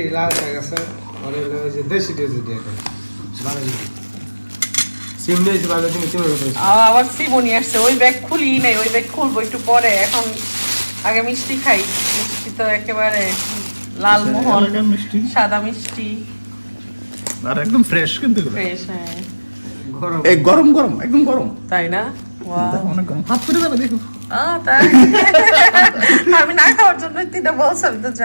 সিম নিয়েছি ভাবে তুমি সিমের কথা বলছো। আবার সিমনি আসছে, ওই ব্যাগ খুলি নাই, ওই ব্যাগ খুলবো একটু পরে। এখন আগে মিষ্টি খাই। মিষ্টি তো একেবারে লালমোহন এলাকার মিষ্টি সাদা মিষ্টি আর একদম ফ্রেশ কিন্তু এগুলো। ফ্রেশ। হ্যাঁ গরম এই গরম গরম একদম গরম, তাই না? Wow. অনেক গরম, হাত ফিরে যাবে দেখো। তাই আমি না খাওয়ার জন্য তিনটা বলছি, আমি তো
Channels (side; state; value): both; inverted; correlation -1.00